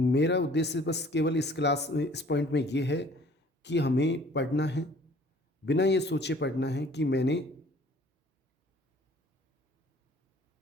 उद्देश्य बस केवल इस पॉइंट में ये है कि हमें पढ़ना है, बिना ये सोचे पढ़ना है कि मैंने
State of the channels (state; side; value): normal; both; correlation 0.54